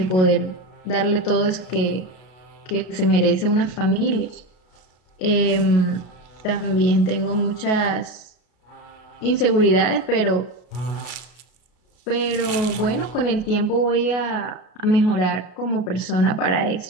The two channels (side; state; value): right; late; 33 ms